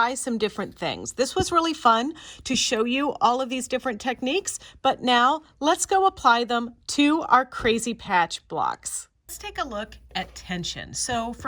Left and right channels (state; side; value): identical; both; correlation 1.00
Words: some different things. This was really fun to show you all of these different techniques, but now let's go apply them to our crazy patch blocks. Let's take a look at tension. So